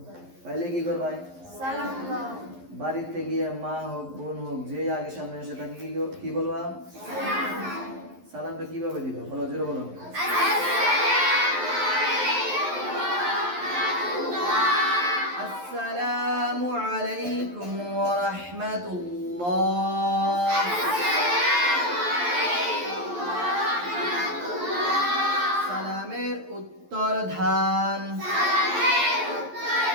পাইলে কি করবাই? সালাম দাও। বাড়িতে গিয়ে মা হোক বোন হোক যে আগে সামনে আসে তাকে কি বলবা? সালামটা কিভাবে দিবা? বলো, জোরে বলো। আসসালামু আলাইকুম ওয়া রাহমাতুল্লাহ। সালামের উত্তর ধান।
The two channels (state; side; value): late; left; 11 ms